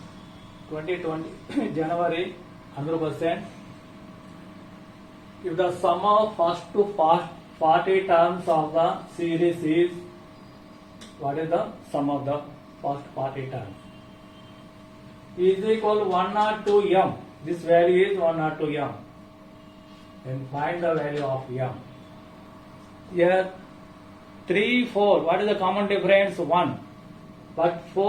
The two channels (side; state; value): both; identical; correlation 1.00